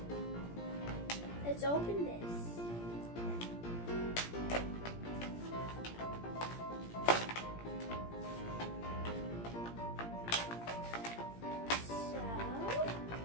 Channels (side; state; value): right; late; 17 ms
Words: Let's open this.